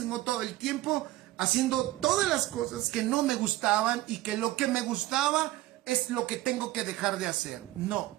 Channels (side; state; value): left; quieter; 17.0 dB